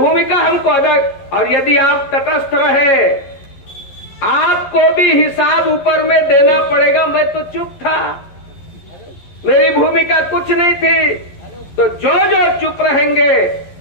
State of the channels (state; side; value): late; right; 11 ms